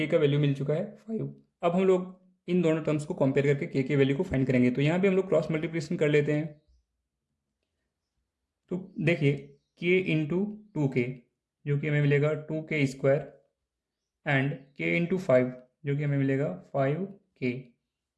का वैल्यू मिल चुका है 5। अब हम लोग इन दोनों टर्म्स को कंपेयर करके k के वैल्यू को फाइंड करेंगे। तो यहाँ पे हम लोग क्रॉस मल्टीप्लिकेशन कर लेते हैं। तो देखिए k इंटू 2k जो कि हमें मिलेगा 2k² एंड k इंटू 5 जो कि हमें मिलेगा 5k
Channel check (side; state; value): both; identical; correlation 1.00